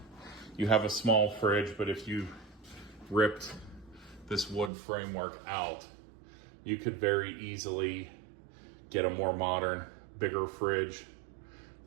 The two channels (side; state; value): left; drops out; at 4.7 s